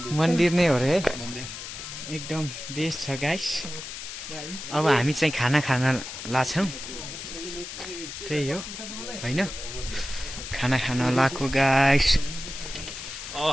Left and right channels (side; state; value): left; noise; hiss, 9 dB below the sound